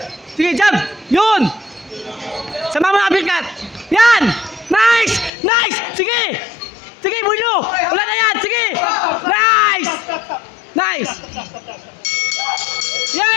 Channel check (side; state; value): right; drops out; at 5.3 s